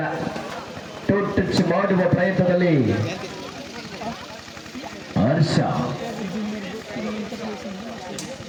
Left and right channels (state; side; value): identical; both; correlation 1.00